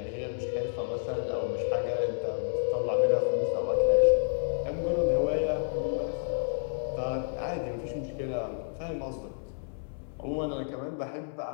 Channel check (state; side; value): silent; right; 58 dB below the other